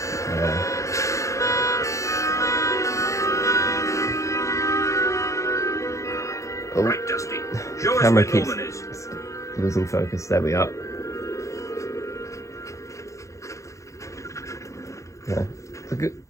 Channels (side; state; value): right; late; 0.15 ms